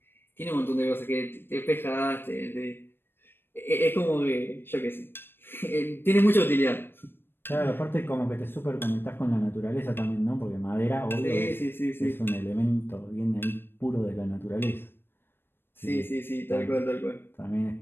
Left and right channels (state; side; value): late; right; 0.10 ms